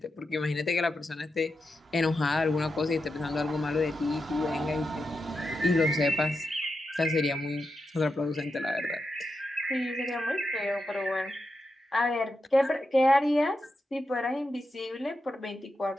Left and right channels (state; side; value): normal; both; correlation 0.88